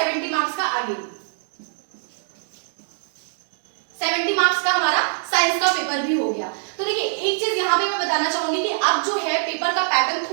मार्क्स का अगेन। 70 मार्क्स का हमारा साइंस का पेपर भी हो गया। तो देखिए एक चीज यहाँ पे मैं बताना चाहूंगी कि अब जो है पेपर का पैटर्न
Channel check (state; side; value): silent; left; digital silence